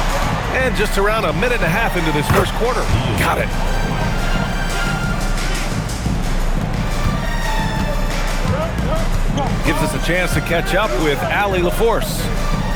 And just around a minute and a half into this first quarter. Got it. Gives us a chance to catch up with Allie LaForce.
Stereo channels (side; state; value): both; identical; correlation 1.00